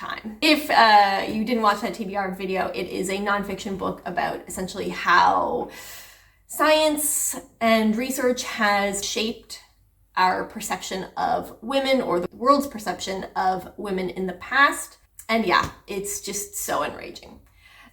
If you didn't watch that TBR video, it is a nonfiction book about essentially how science and research has shaped our perception of women, or the world's perception of women in the past. And yeah, it's just so enraging.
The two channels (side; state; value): both; identical; correlation 1.00